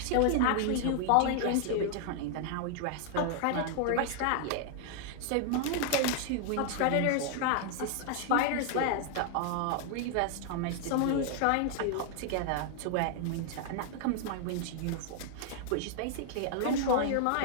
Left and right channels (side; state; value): both; different; correlation 0.00